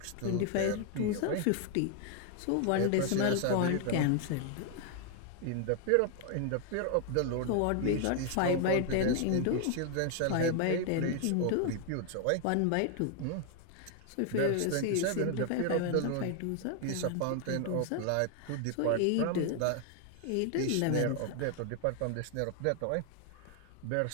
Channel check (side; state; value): both; different; correlation 0.00